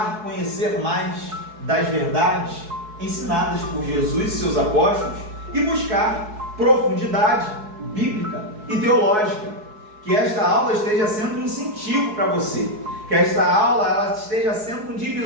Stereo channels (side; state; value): left; late; 4.7 ms